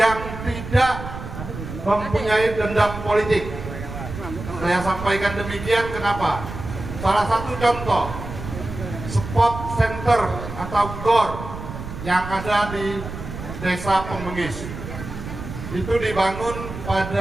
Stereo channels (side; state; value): right; noise; rumble, 9 dB below the sound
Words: tidak mempunyai dendam politik. Saya sampaikan demikian kenapa? Salah satu contoh, spot center atau GOR yang ada di Desa Pembengis itu dibangun